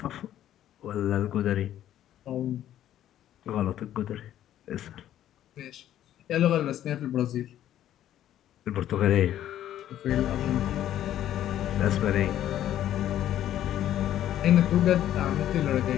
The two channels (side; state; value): right; quieter; 11.8 dB